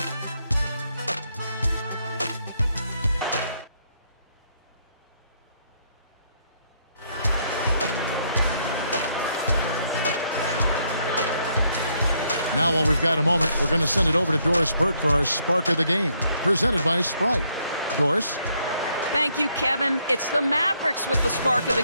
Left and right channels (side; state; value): both; inverted; correlation -0.73